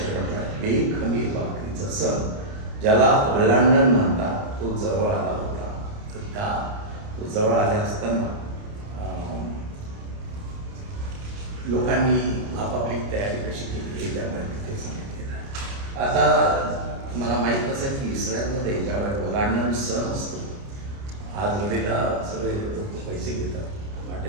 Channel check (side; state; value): left; late; 29 ms